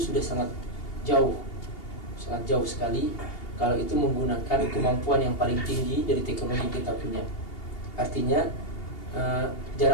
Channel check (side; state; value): right; late; 2.8 ms